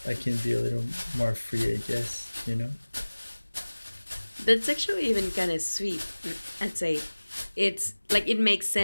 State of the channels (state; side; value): inverted; both; correlation -1.00